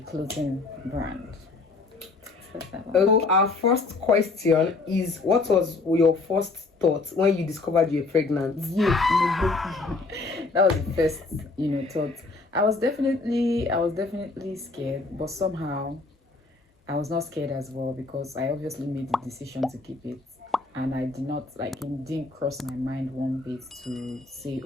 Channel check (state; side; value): quieter; right; 3.6 dB